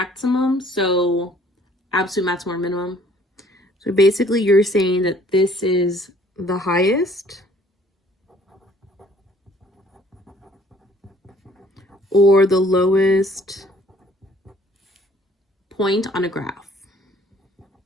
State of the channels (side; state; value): both; normal; correlation 0.58